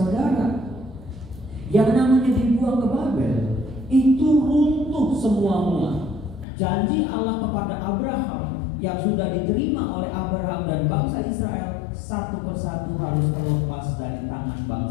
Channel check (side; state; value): right; drops out; at 6.5 s